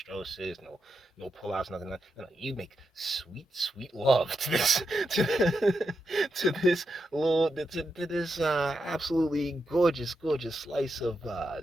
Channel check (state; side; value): normal; both; correlation 0.86